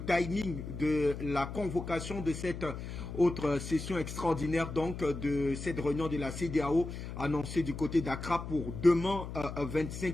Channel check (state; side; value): noise; left; hum, 8 dB below the sound